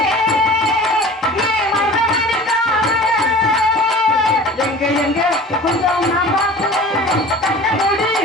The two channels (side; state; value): both; normal; correlation 0.41